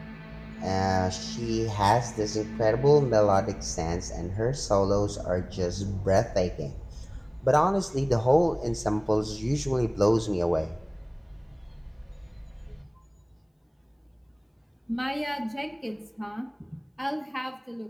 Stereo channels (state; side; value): identical; both; correlation 1.00